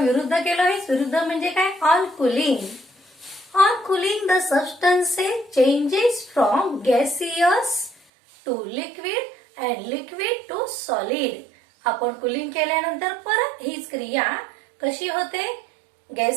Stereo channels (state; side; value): drops out; left; at 8.0 s